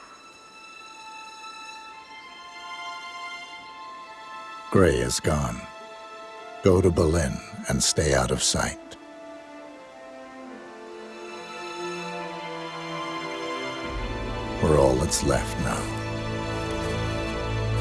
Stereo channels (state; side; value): identical; both; correlation 1.00